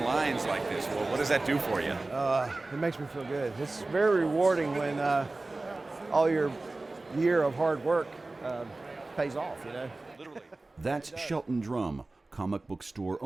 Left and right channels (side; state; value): left; quieter; 3.1 dB